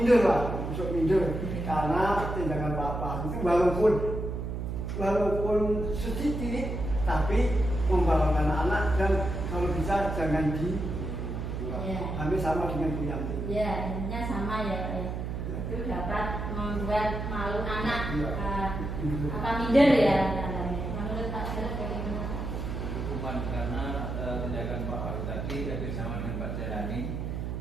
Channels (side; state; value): right; noise; hum, 4 dB below the sound